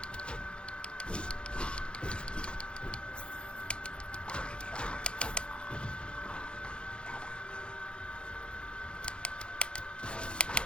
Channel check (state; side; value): late; right; 0.055 ms